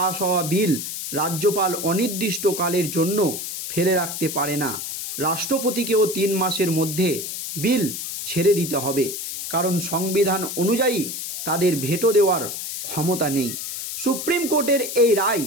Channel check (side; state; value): left; noise; hiss, 6 dB below the sound